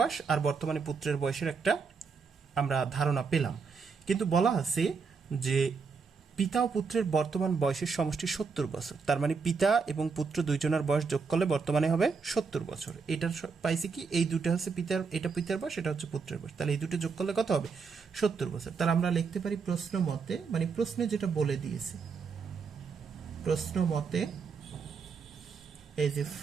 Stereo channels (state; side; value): quieter; left; 5.2 dB